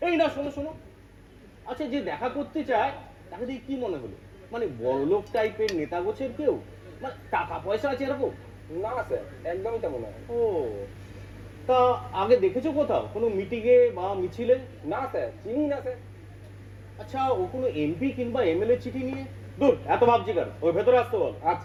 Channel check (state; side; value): identical; both; correlation 1.00